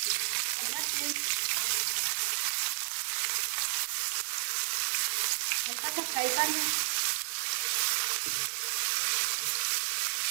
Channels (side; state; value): left; silent; digital silence